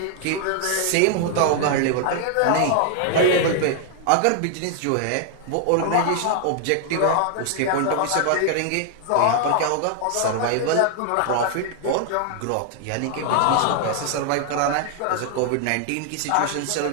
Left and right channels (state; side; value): different; both; correlation 0.00